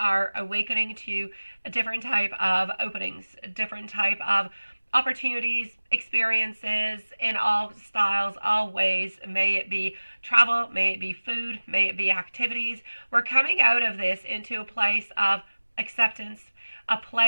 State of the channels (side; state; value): both; inverted; correlation -1.00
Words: awakening to a different type of openings, a different type of opportunities, experiences in all styles, all ways. May it be travel, may it be food, may it be activities. We're coming out of this into a place of acceptance, a